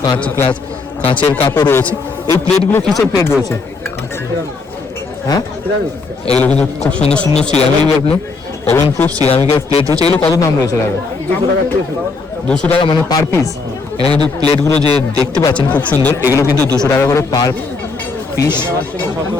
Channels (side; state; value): right; quieter; 4.2 dB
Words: কাঁচের কাপও রয়েছে। এই প্লেটগুলো কিসের প্লেট রয়েছে? হ্যাঁ, এগুলো কিন্তু খুব সুন্দর সুন্দর সিরামিক ওভেন প্রুফ সিরামিকের প্লেট রয়েছে। এগুলো কত দাম রয়েছে দাদা? 200 টাকা মানে পার পিস। এখানে কিন্তু প্লেটগুলো যে দেখতে পাচ্ছেন খুব সুন্দর, এগুলো কিন্তু 200 টাকা করে পার পিস।